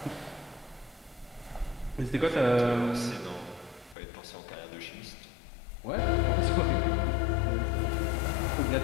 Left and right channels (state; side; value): drops out; right; at 4.0 s